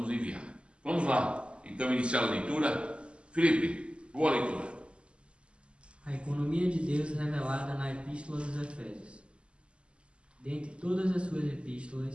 enviar. Vamos lá, então, iniciar a leitura. Felipe, boa leitura. A economia de Deus revelada na Epístola dos Efésios. Dentre todas as suas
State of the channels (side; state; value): left; late; 0.054 ms